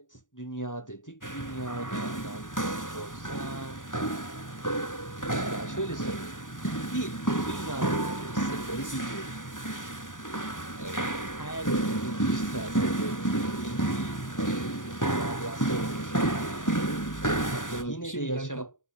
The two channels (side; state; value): right; late; 0.88 ms